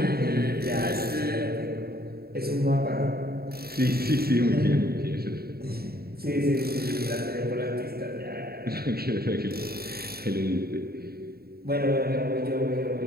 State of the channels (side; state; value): left; late; 0.45 ms